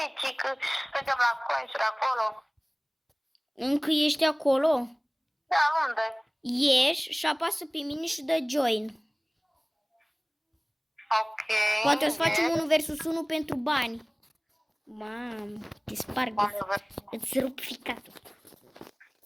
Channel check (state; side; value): identical; both; correlation 1.00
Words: 10, că suntem la consuri acolo. Încă ești acolo? Da, unde? Ieși și apasă pe mine și dă join. Ok. Poate o să facem 1 versus 1 pentru bani. Mamă, te sparg, îți rup ficatul.